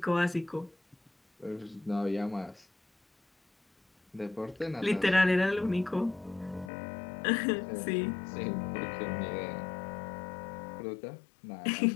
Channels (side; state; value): right; drops out; at 6.7 s